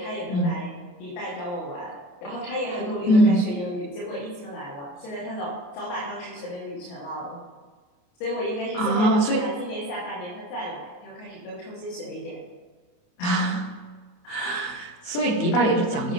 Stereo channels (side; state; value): right; late; 28 ms